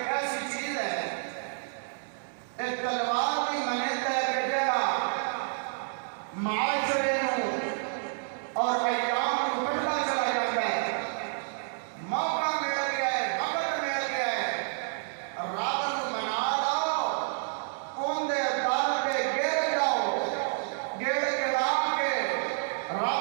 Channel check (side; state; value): left; silent; digital silence